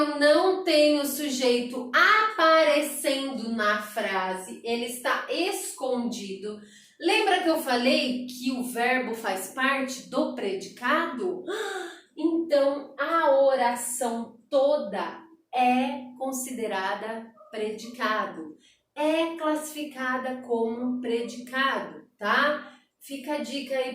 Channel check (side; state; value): both; identical; correlation 1.00